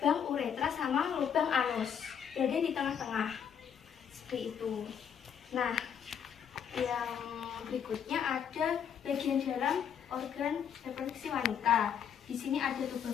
uretra sama lubang anus, berada di tengah-tengah seperti itu. Nah, yang berikutnya ada bagian dalam organ reproduksi wanita. Di sini ada tuba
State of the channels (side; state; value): right; quieter; 8.1 dB